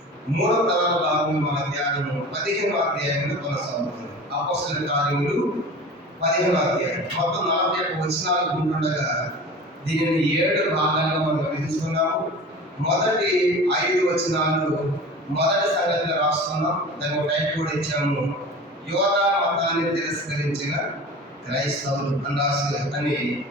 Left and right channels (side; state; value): both; normal; correlation 0.37